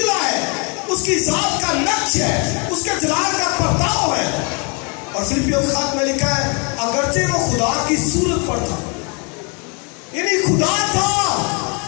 ہے، اس کی ذات کا نقش ہے، اس کے جلال کا پرتاؤ ہے. اور فلپیوں کے خط میں لکھا ہے اگرچہ وہ خدا کی صورت پر تھا، یعنی خدا تھا،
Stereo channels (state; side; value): quieter; right; 34.5 dB